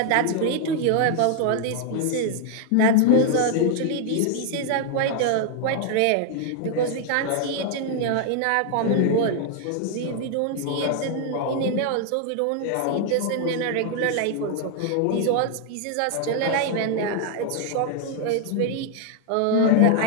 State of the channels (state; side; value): different; both; correlation 0.00